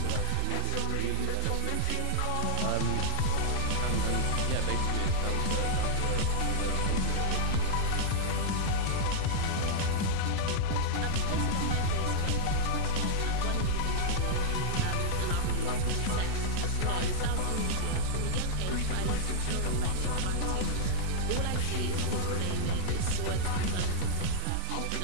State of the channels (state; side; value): different; both; correlation -0.01